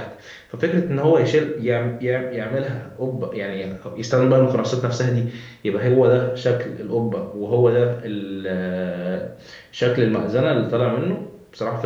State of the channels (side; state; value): both; identical; correlation 1.00